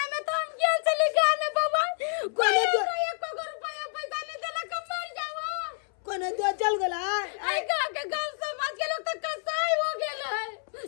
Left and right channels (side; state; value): right; silent; 59 dB below the other